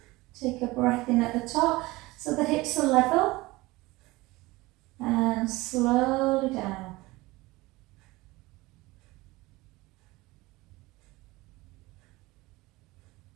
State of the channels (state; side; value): quieter; left; 20.9 dB